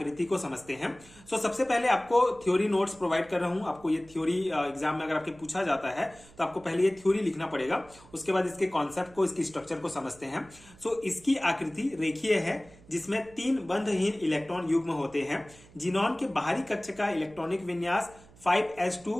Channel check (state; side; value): noise; right; hum, 24 dB below the sound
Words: को समझते हैं। सो सबसे पहले आपको थ्योरी नोट्स प्रोवाइड कर रहा हूं। आपको ये थ्योरी एग्जाम में अगर आपके पूछा जाता है तो आपको पहले ये थ्योरी लिखना पड़ेगा, उसके बाद इसके कॉन्सेप्ट को, इसकी स्ट्रक्चर को समझते हैं। सो इसकी आकृति रेखीय है, जिसमें 3 बंधहीन इलेक्ट्रॉन युग्म होते हैं। जीनोन के बाहरी कक्ष का इलेक्ट्रॉनिक विन्यास